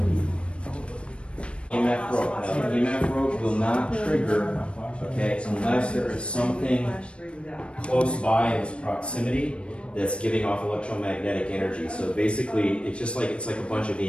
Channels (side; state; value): right; late; 0.058 ms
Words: EMF rope. Now, EMF rope will not trigger, okay, unless there is something close by in its proximity that's giving off electromagnetic energy. So basically, it's like a bunch of